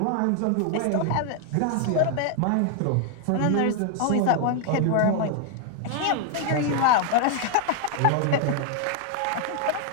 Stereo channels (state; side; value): different; both; correlation 0.00